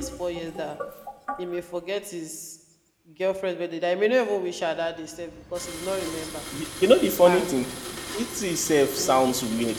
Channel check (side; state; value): both; identical; correlation 1.00